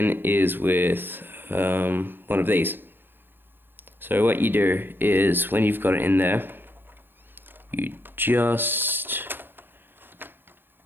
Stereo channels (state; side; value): late; left; 0.099 ms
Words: is with one of these. So what you do is when you've got it in there, you just